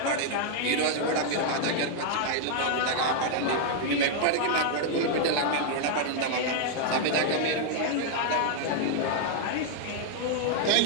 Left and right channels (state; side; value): different; both; correlation -0.01